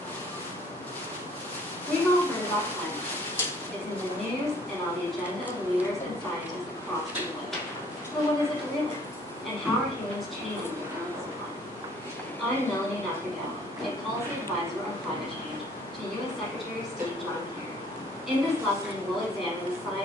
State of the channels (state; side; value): normal; both; correlation 0.58